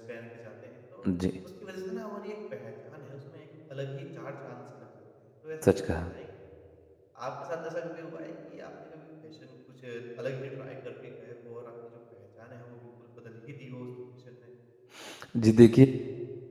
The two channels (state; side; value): identical; both; correlation 1.00